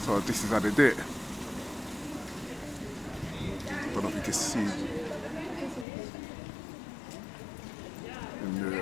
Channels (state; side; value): drops out; right; at 5.9 s